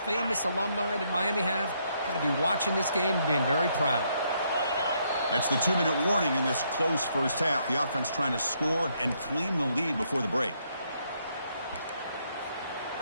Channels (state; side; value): inverted; both; correlation -0.73